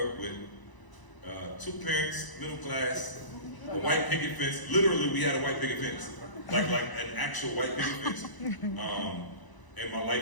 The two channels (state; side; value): late; right; 1.0 ms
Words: up with 2 parents, middle class, a white picket fence. Literally, we had a white picket fence. Like an actual white picket fence. And my